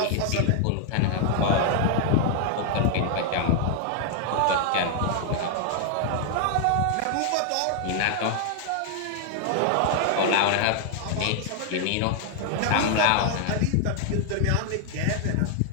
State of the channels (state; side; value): different; both; correlation 0.00